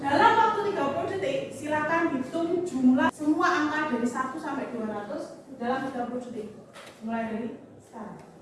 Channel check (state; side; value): identical; both; correlation 1.00